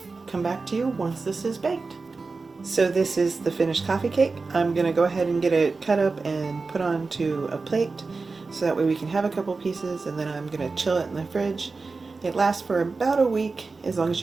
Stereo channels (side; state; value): left; quieter; 4.1 dB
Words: come back to you once this is baked. So this is the finished coffee cake. I'm going to go ahead and get it cut up and put onto a plate so that way we can have a couple pieces, and then I'm going to chill it in the fridge. It lasts for about a week as long as